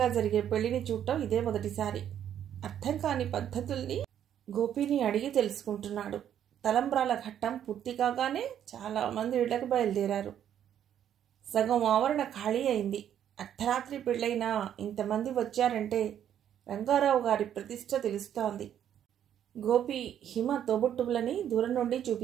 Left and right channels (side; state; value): left; quieter; 10.0 dB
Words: జరిగే పెళ్లిని చూడటం ఇదే మొదటిసారి. అర్థం కాని పద్ధతుల్ని గోపిని అడిగి తెలుసుకుంటున్నాడు. తలంబ్రాల ఘట్టం పూర్తి కాగానే చాలా మంది ఇళ్లకు బయలుదేరారు. సగం ఆవరణ ఖాళీ అయింది. అర్ధరాత్రి పెళ్ళైనా ఇంతమంది వచ్చారంటే రంగారావు గారి ప్రతిష్ట తెలుస్తోంది. గోపి హిమ తోబుట్టువులని దూరం నుండి